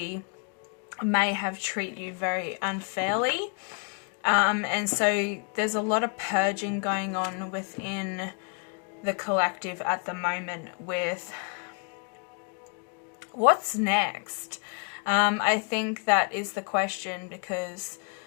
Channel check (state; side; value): quieter; right; 36.5 dB